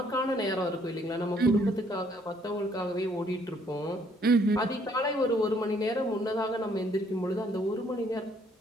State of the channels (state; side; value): normal; both; correlation 0.66